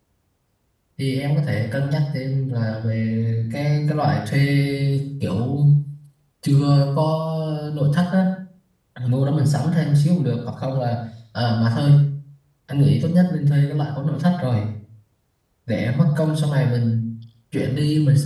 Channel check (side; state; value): both; identical; correlation 1.00